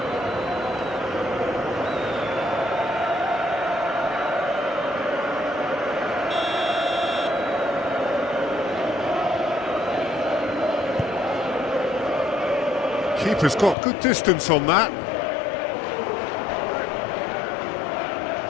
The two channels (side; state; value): right; drops out; at 13.8 s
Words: Keeper's got good distance on that.